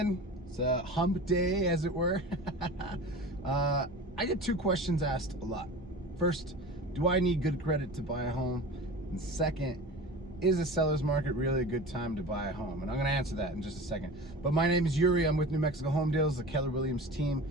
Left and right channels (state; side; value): normal; both; correlation 0.35